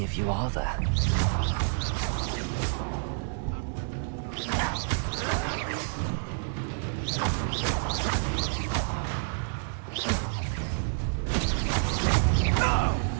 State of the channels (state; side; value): silent; left; digital silence